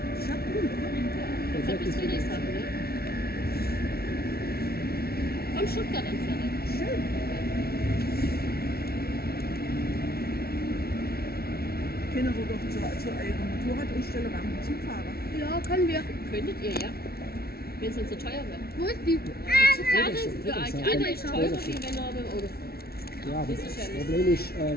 ist ja cool, oder? Von bis Friedrichshafen, ne? Von Stuttgart entfernt. Schön. Können wir doch zu eurer Motorradausstellung am Zugfahrer. Ja, können wir. Könntet ihr, ja. Wenn es nicht so teuer wäre. Wo ist die? Zugfahrt für euch alle ist teurer, wie wenn ihr mit dem Auto fahrt. Ja, aber Das ist das ja nicht. Problem ist,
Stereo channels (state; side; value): late; right; 0.45 ms